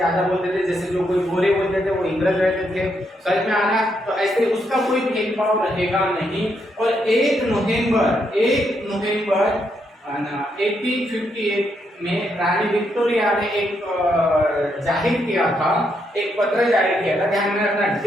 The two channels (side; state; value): both; normal; correlation 0.78